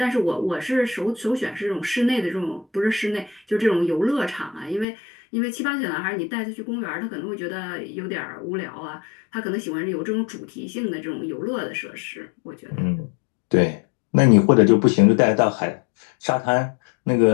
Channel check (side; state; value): right; drops out; at 4.9 s